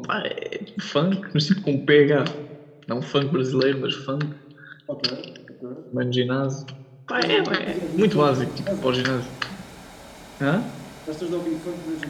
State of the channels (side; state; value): both; identical; correlation 1.00